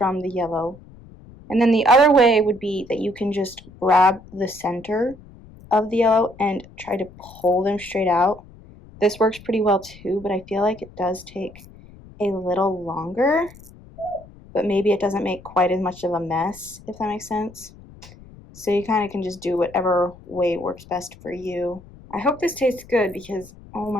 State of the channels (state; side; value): noise; left; rumble, 21 dB below the sound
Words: the yellow. And then the other way would be that you can just grab the center of the yellow and try to pull them straight out. This works pretty well too, but I feel like it does take a little longer, but maybe it doesn't make quite as much of a mess, if that makes sense. So you kind of can just do whatever way works best for you. I hope this tastes good because, oh